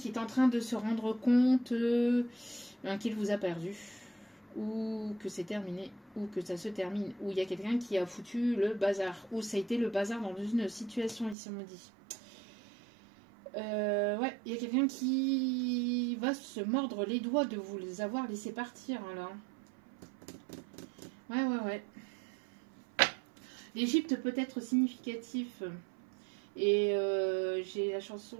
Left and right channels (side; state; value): left; drops out; at 11.4 s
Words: est en train de se rendre compte qu'il vous a perdu. ou que c'est terminé, ou que ça se termine, ou il y a quelqu'un qui a foutu le bazar, ou ça a été le bazar dans une situation, ici on me dit. Ouais, il y a quelqu'un qui va se mordre les doigts de vous les avoir laissés partir, hein, là. Ouais. L'Égypte peut être significatif. Et j'ai la chanson